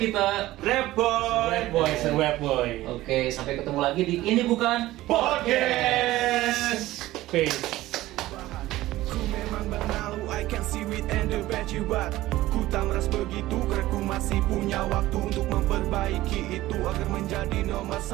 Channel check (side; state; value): left; quieter; 16.5 dB